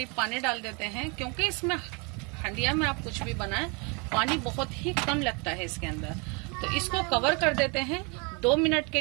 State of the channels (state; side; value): quieter; left; 31.7 dB